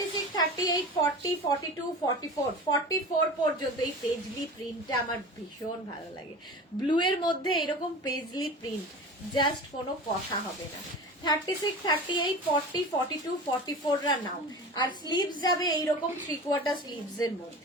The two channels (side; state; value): both; normal; correlation 0.34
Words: 38, 40, 42, 44, 44 পর্যন্ত এই পেজলি প্রিন্টটা আমার ভীষণ ভালো লাগে। ব্লু এর মধ্যে এরকম পেজলি প্রিন্ট, জাস্ট কোনো কথা হবে না। 36, 38, 40, 42, 44 রা নাও। আর স্লিভস যাবে এইরকম 3/4 স্লিভস এর